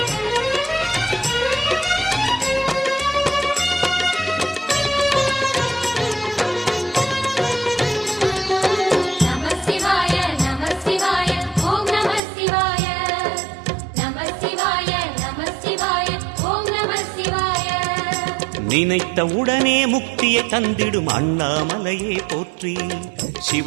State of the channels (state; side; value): drops out; left; at 12.2 s